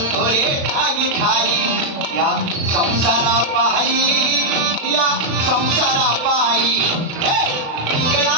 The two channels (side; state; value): left; late; 35 ms